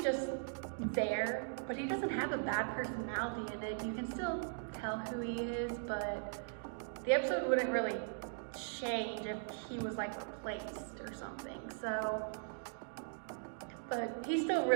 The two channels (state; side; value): silent; left; digital silence